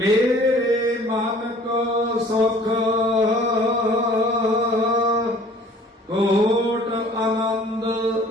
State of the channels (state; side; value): normal; both; correlation 0.51